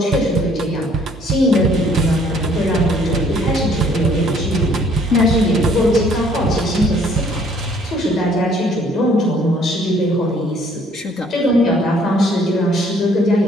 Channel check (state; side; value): normal; both; correlation 0.61